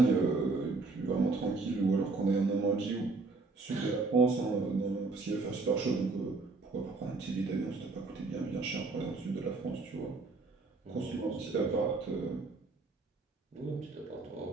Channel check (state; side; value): quieter; left; 3.7 dB